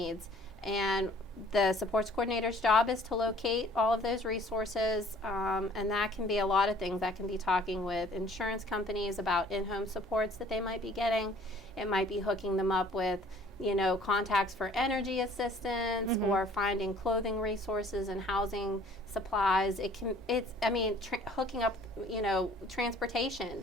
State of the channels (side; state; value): both; normal; correlation 0.55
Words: And the supports coordinator's job is to locate all of those resources, and that can be a lot of things. That can be talking with insurance companies about in-home supports that they might be getting. It might be hooking them up with, contacts for energy assistance, or finding clothing resources and housing supplies. Hooking up,